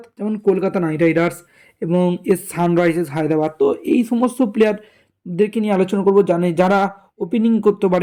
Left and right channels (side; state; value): both; identical; correlation 1.00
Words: যেমন কলকাতা নাইট রাইডার্স এবং সানরাইজার্স হায়দ্রাবাদ। তো এই সমস্ত প্লেয়ারদেরকে নিয়ে আলোচনা করবো যারা ওপেনিং করতে